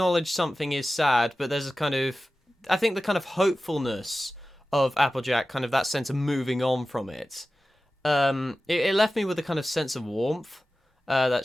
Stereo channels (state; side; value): normal; both; correlation 0.95